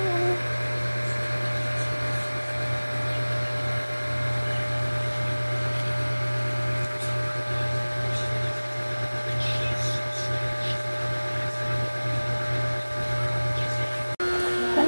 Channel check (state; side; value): inverted; both; correlation -1.00